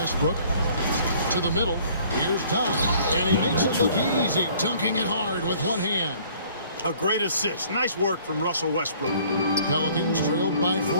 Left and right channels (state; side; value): inverted; both; correlation -0.56